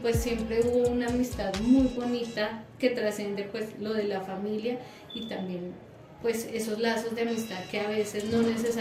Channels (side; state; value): both; identical; correlation 1.00